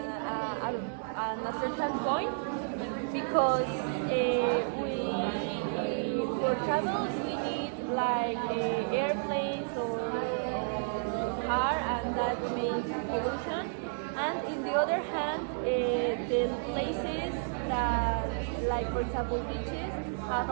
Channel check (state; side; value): silent; left; digital silence